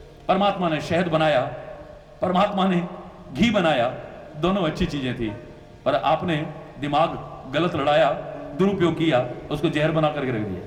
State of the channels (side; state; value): both; identical; correlation 1.00